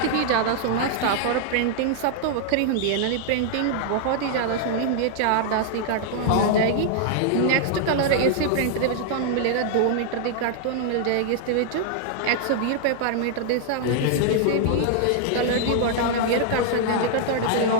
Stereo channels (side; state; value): both; different; correlation 0.00